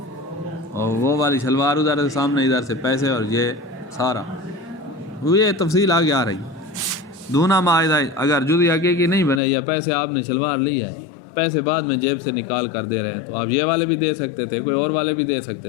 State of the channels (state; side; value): drops out; right; at 9.4 s